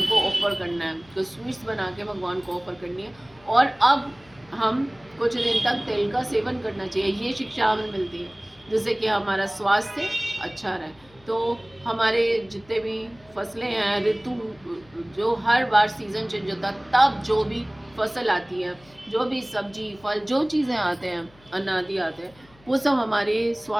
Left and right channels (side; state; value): left; noise; hum, 27 dB below the sound